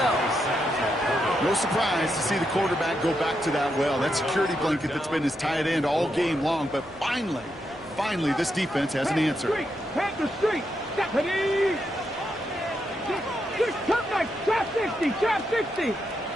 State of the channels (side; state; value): both; normal; correlation 0.82